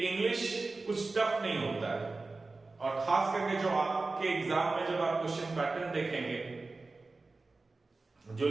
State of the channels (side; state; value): left; quieter; 3.6 dB